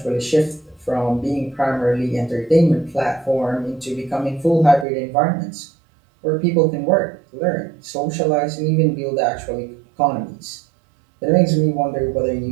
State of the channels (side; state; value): left; drops out; at 4.9 s